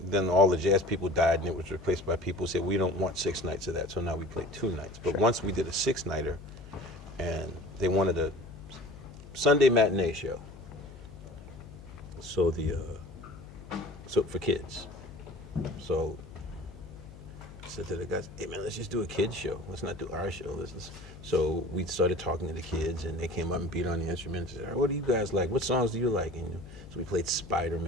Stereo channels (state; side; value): noise; left; hum, 17 dB below the sound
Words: Then all the jazz people died, and it was replaced by people who said we don't want 6 nights of that. So now we play 2 nights. But once we did a 6-nighter, and they wanted a Sunday matinee show. So so for kids. So I said to the guys, "Hey man, let's just do a kids show. Let's not do our show. So we started talking to the kids, and they came up and beat on the instruments. And said, "What do you guys like? What songs do you like?" And so we played